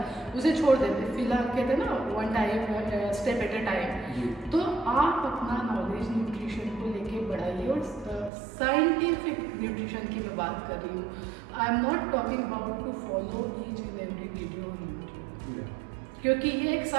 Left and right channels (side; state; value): left; drops out; at 8.3 s